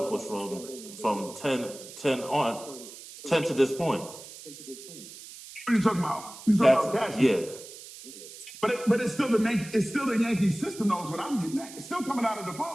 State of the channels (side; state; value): right; noise; hiss, 15 dB below the sound